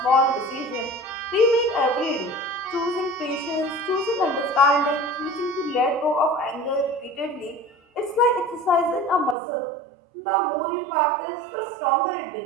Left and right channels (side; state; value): left; drops out; at 9.3 s